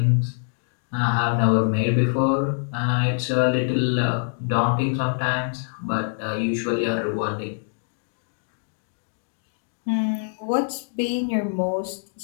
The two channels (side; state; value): right; silent; digital silence